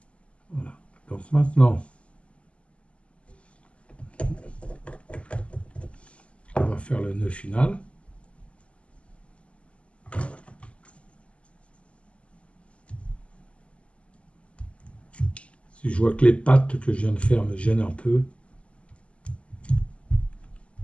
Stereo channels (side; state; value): right; late; 0.058 ms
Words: voilà. Donc maintenant, on va faire le nœud final. Si je vois que les pattes que je viens de faire me gênent un peu,